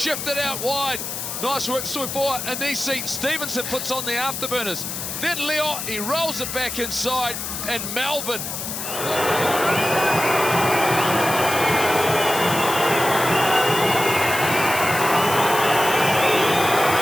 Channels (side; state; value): left; noise; hiss, 5 dB below the sound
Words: out wide. Nice work so far. Anisi Stevenson puts on the afterburners. Then Leo, he rolls it back inside, and Melbourne.